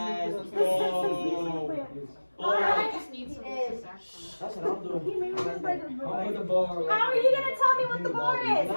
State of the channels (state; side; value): inverted; both; correlation -1.00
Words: The Simpsons nuclear plant. Alright. just needs some That's what I'm doing. He made me like a I'll put the bar. How are you gonna tell me what the bar is? How